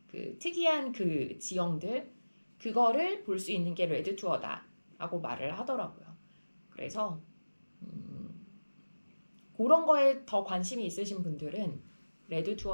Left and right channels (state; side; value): inverted; both; correlation -1.00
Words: 그 특이한 그 지형들, 그거를 볼 수 있는 게 레드 투어다라고 말을 하더라고요. 그래서 그런 거에 더 관심이 있으신 분들은 레드